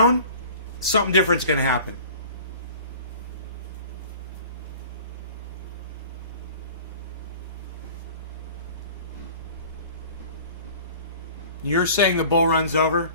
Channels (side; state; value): both; inverted; correlation -0.44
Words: something different's going to happen. You're saying the bull run's over?